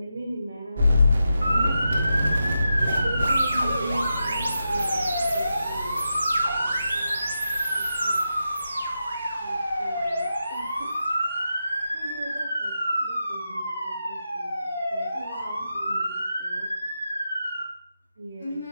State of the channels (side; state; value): both; inverted; correlation -0.87